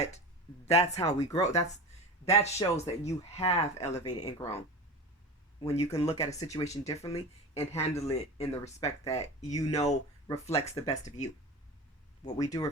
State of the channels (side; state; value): both; normal; correlation 0.30